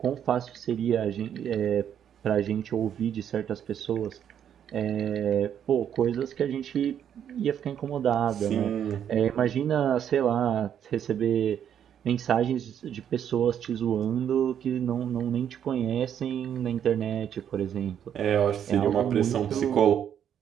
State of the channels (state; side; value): quieter; left; 9.2 dB